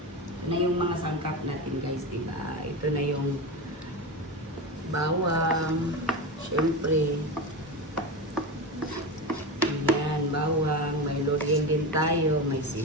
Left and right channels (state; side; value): normal; both; correlation 0.21